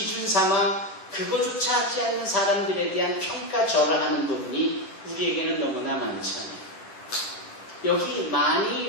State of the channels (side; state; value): right; late; 10 ms